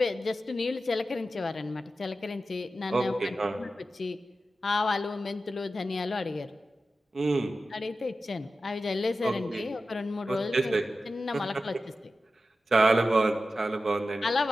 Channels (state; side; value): normal; both; correlation 0.93